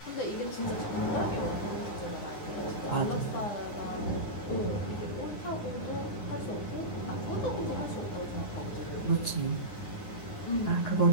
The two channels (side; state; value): right; late; 9.7 ms